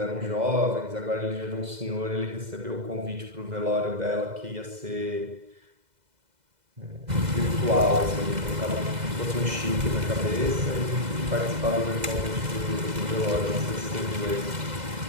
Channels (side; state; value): left; late; 2.0 ms